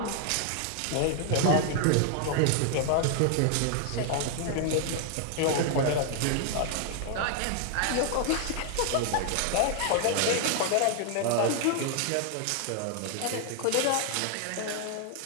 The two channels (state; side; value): different; both; correlation 0.00